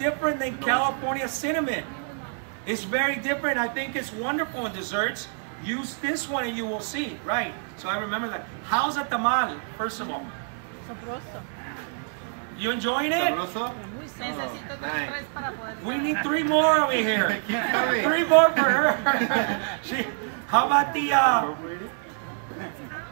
than California cinnamon. It's very different. I think it's wonderful in desserts. Use this one and you will see. Right. So I remember that. How's a tamal, first of all? Sabroso. You enjoying it? Sabroso? Necesito tres para poder. We need 3 more over here. 3 more for her. How about the... Are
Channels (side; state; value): left; silent; 61 dB below the other